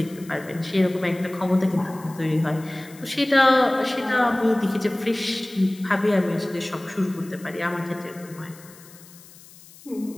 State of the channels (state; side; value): noise; left; hiss, 22 dB below the sound